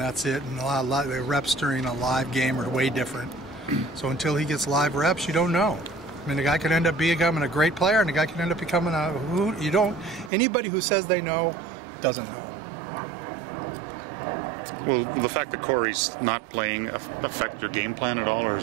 it. And a lot of the reps during a live game are way different. So until he gets live reps, you don't know. I mean, the guy could end up becoming a great player, and the guy could end up becoming anybody who says they know doesn't know. Will the fact that Corey's not playing affect your game plan at all, or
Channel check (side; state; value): left; drops out; at 10.3 s